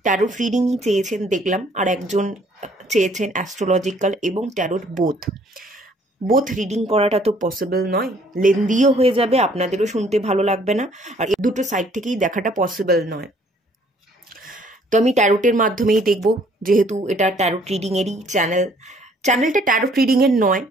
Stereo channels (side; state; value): both; normal; correlation 0.61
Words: ট্যারোট রিডিংই চেয়েছেন দেখলাম, আর একজন চেয়েছেন অ্যাস্ট্রোলজিক্যাল এবং ট্যারোট বোথ রিডিং করাটা তো পসিবল নয়, লেন্দিও হয়ে যাবে, আপনাদেরও শুনতে ভালো লাগবে না, আর দুটো সাইড থেকেই দেখাটা পসিবল নয়। তো আমি ট্যারোটের মাধ্যমেই দেখব, যেহেতু এটা ট্যারোট রিডিংয়েরই চ্যানেলটা ট্যারোট রিডিংয়ের নয়।